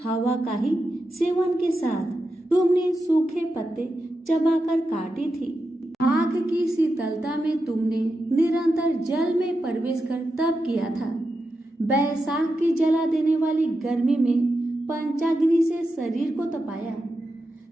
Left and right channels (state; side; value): normal; both; correlation 0.89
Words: हवा का ही सेवन के साथ तुमने सूखे पत्ते चबाकर काटी थी। आग की शीतलता में तुमने निरंतर जल में प्रवेश कर तप किया था। बैसाख की जला देने वाली गर्मी में पंचाग्नि से शरीर को तपाया।